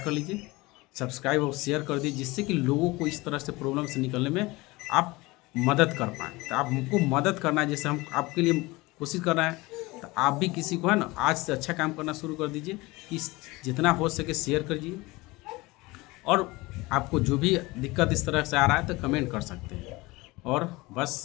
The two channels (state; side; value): quieter; right; 22.0 dB